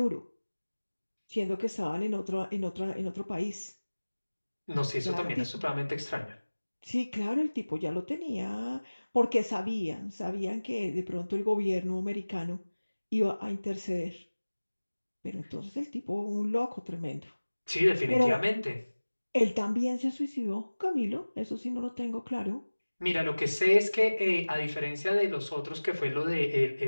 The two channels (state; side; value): inverted; both; correlation -1.00